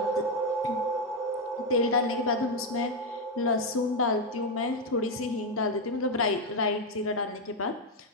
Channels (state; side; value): normal; both; correlation 0.05